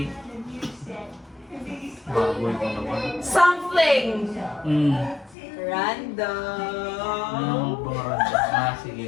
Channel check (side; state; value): right; drops out; at 5.4 s